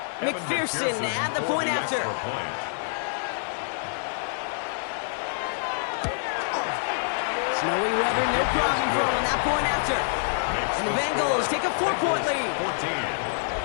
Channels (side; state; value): right; silent; 61 dB below the other